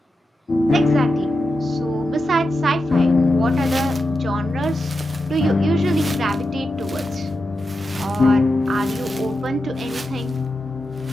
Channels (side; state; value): both; normal; correlation 0.89